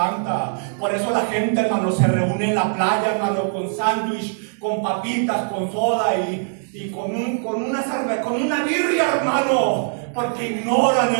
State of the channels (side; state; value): left; silent; digital silence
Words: Por eso la gente, hermano, se reúne en la playa, hermano, con sándwich, con papitas, con soda y con una cerveza, con una birria, hermano. Porque ignoran,